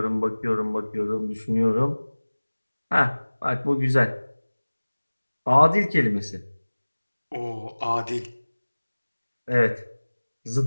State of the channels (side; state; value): both; inverted; correlation -1.00